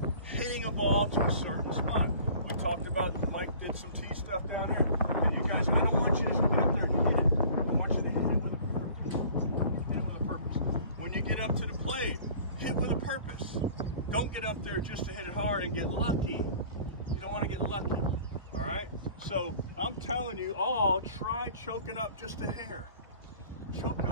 hitting a ball to a certain spot. We talked about, Mike did some tee stuff down here. And you guys, I don't want you to just get up there and hit it. I want you to hit it with a purpose. Hit it with a purpose. When you get up to the plate, hit with a purpose. Don't get up there just to hit it hard and get lucky. You don't want to get lucky. All right? So I'm telling you all, try choking up just a hair. Choke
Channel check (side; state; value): both; inverted; correlation -0.48